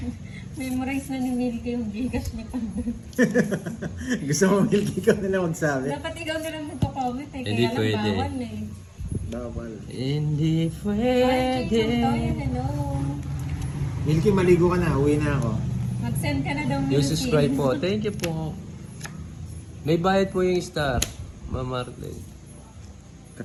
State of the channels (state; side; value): identical; both; correlation 1.00